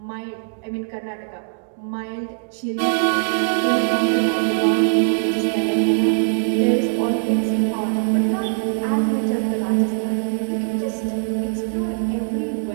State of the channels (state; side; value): silent; left; digital silence